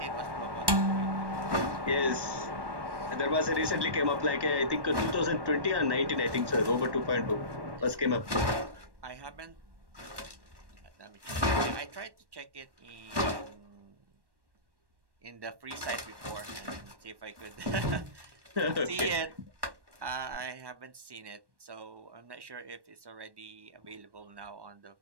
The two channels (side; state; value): left; late; 1.1 ms